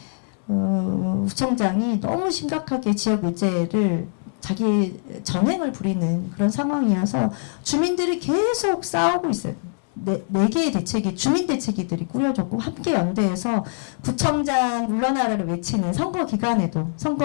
구청장이 너무 심각하게 지역 의제를 자기 전횡을 부리는 그런 상황이어서 주민들이 계속 싸우고 있어요. 네 개의 대책이, 주민 대책위들이 꾸려졌고, 함께 연대해서 구청장 물러나라를 외치는 선거 기간에도,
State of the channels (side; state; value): right; silent; digital silence